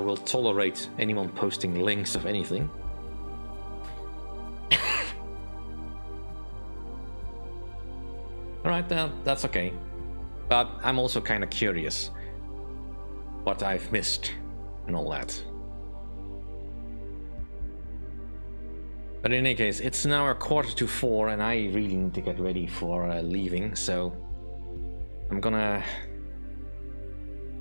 tolerate anyone posting links of anything. Alright, that's okay. But I'm also kind of curious what I've missed and all that. But in any case, it's now 3:45 and I really need to get ready for leaving, so I'm gonna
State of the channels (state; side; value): inverted; both; correlation -1.00